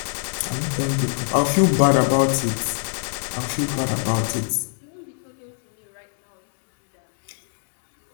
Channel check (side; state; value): right; silent; 62 dB below the other